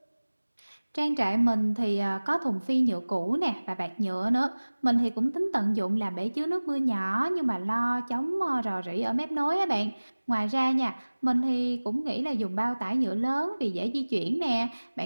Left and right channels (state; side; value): inverted; both; correlation -1.00